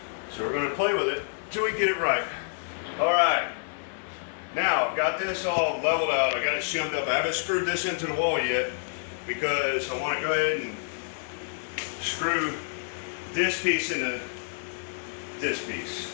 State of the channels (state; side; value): silent; right; digital silence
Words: So we're going to play with it until we get it right. All right. Now I've got this all leveled out. I got it shimmed up. I haven't screwed this into the wall yet because I want to go ahead and screw this piece into this piece.